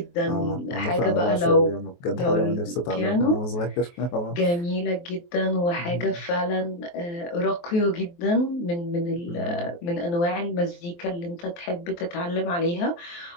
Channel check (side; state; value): right; late; 23 ms